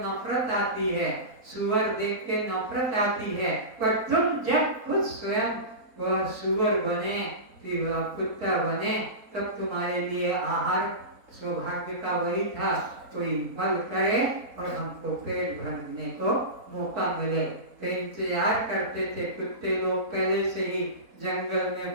आती है, सुअर देख के नफरत आती है, पर तुम जब खुद स्वयं वह सुअर बने, फिर वह कुत्ता बने, तब तुम्हारे लिए आहार सौभाग्य का वही था, कोई फल करे और हमको पेट भरने को मौका मिले। तो इंतजार करते थे कुत्ते लोग, पहले से ही जंगल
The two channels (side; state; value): left; late; 4.2 ms